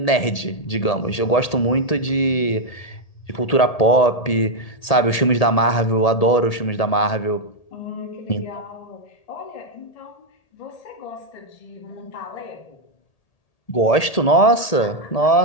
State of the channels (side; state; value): right; late; 1.8 ms